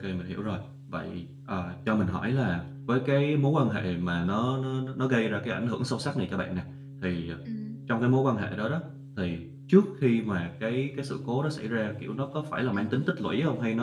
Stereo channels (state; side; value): identical; both; correlation 1.00